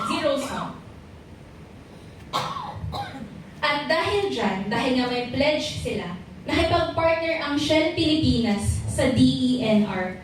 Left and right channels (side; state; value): both; identical; correlation 1.00